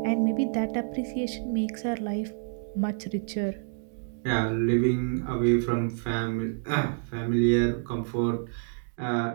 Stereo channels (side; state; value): left; silent; digital silence